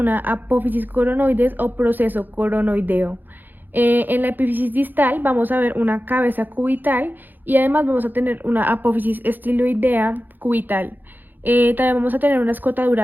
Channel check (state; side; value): late; left; 0.088 ms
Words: apófisis coronoides o proceso coronoideo. En la epífisis distal vamos a ver una cabeza cubital y además vamos a tener una apófisis estiloidea cubital. También vamos a tener una